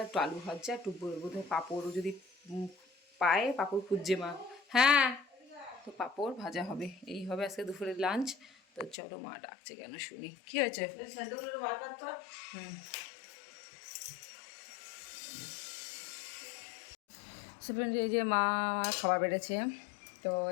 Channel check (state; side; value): drops out; right; at 9.0 s